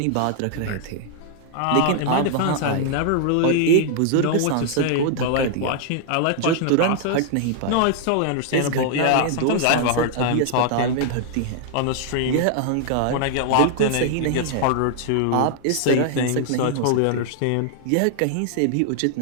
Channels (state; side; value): different; both; correlation 0.00